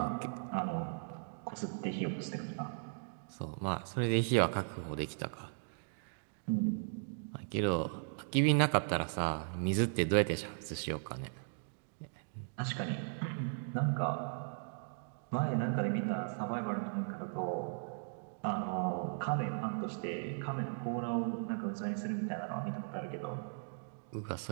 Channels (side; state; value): left; silent; digital silence